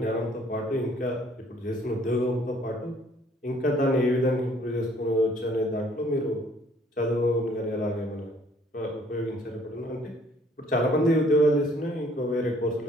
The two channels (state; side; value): normal; both; correlation 0.60